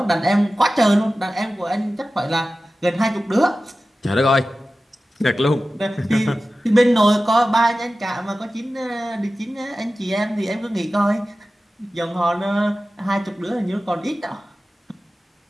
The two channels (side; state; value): both; normal; correlation 0.95